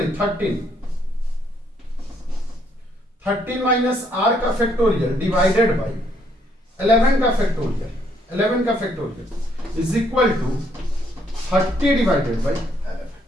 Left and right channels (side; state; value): both; normal; correlation 0.70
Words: 13 माइनस r का फैक्टोरियल डिवाइडेड बाय 11 का फैक्टोरियल, 11 का factorial is equal to 30 divided by 11।